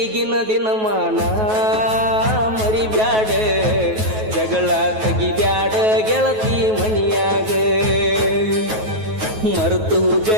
ದಿನಮಾನ ಮರಿಬ್ಯಾಡ ಜಗಳ ತೆಗಿಬ್ಯಾಡ ಗೆಳತಿ ಮನಿಯಾಗ ಮರ್ತೋಗ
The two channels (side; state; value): left; late; 9.3 ms